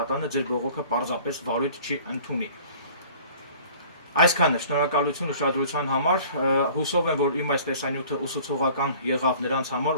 ձեր բողոքը պարզապես վարույթ չի ընդունի։ Այսքանը, շնորհակալություն ուշադրության համար, հուսով եմ, որ իմ այս տեսանյութը ուսուցողական եղավ նրանց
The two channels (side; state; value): both; inverted; correlation -0.49